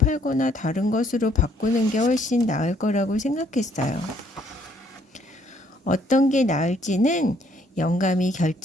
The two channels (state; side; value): normal; both; correlation 0.66